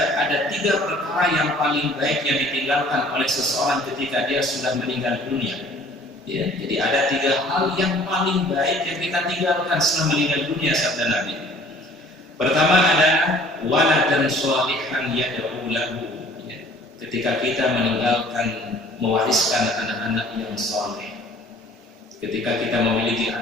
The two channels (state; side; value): normal; both; correlation 0.53